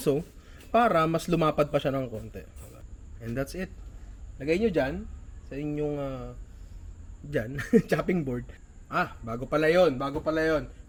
para mas lumapad pa siya ng konti. And that's it. Lagay nyo dyan, sa inyong chopping board. Bago pala yon.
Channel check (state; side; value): identical; both; correlation 1.00